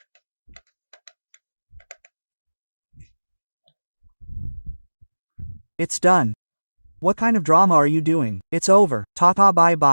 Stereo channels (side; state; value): both; inverted; correlation -1.00